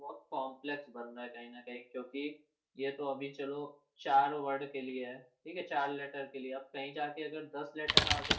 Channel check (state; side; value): identical; both; correlation 1.00